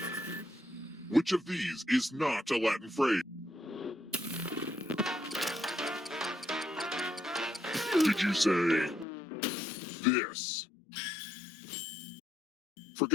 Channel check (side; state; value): right; drops out; at 9.1 s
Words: Which of these is not a Latin phrase? Did you say... this?